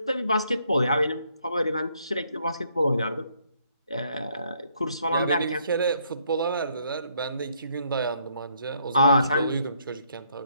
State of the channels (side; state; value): both; inverted; correlation -0.70